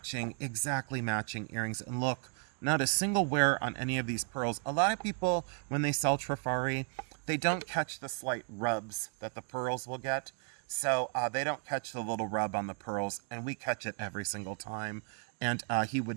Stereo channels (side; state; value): left; quieter; 38.5 dB